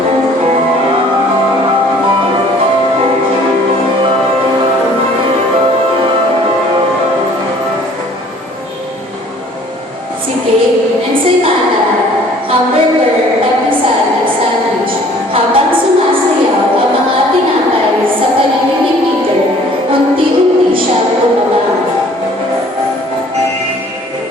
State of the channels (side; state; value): both; normal; correlation 0.54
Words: Si cake, ensaymada, hamburger, papisal at sandwich habang sumasayaw ang mga tinapay sa paligid ni Peter, unti-unti siya bumaba.